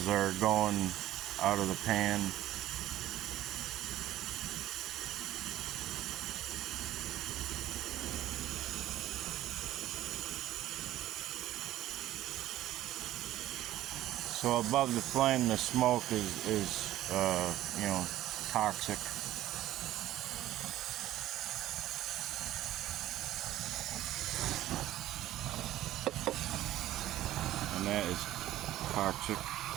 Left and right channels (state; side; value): quieter; left; 14.2 dB